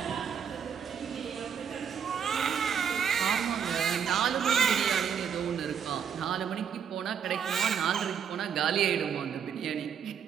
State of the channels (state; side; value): quieter; left; 7.7 dB